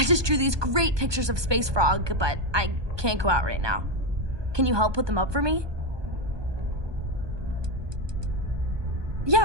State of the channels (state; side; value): late; left; 1.2 ms